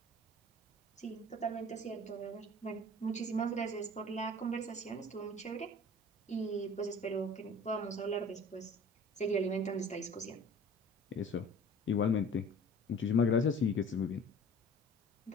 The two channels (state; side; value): normal; both; correlation 0.46